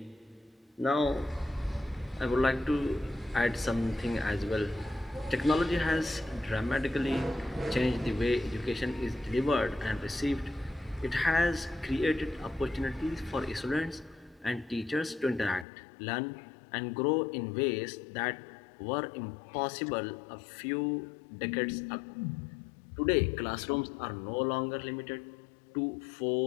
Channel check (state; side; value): drops out; right; at 15.7 s